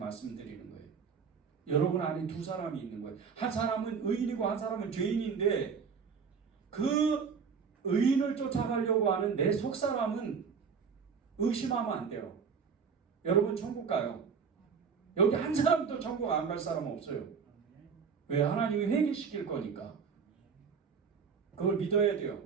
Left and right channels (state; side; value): quieter; left; 6.1 dB